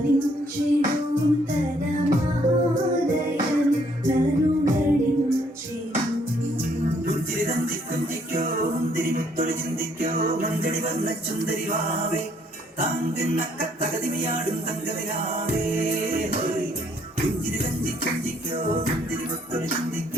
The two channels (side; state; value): both; normal; correlation 0.66